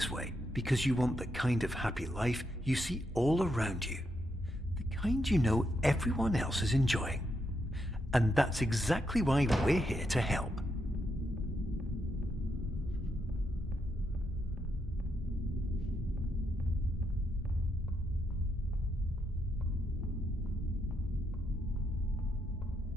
way because you want the kind of happy life you see all around you, the kind you know everyone else is enjoying. And that's exactly why we're here to help.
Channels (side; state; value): both; normal; correlation 0.80